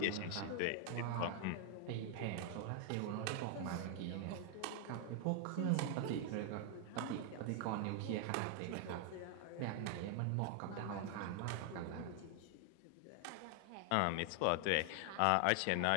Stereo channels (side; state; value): both; different; correlation 0.00